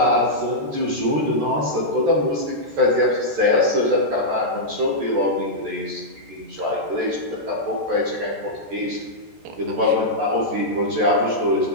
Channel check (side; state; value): left; late; 14 ms